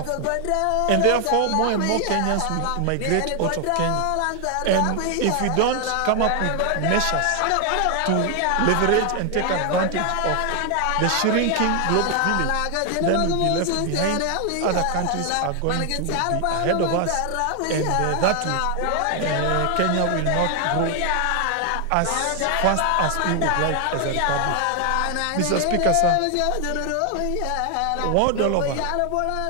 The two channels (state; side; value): different; both; correlation 0.00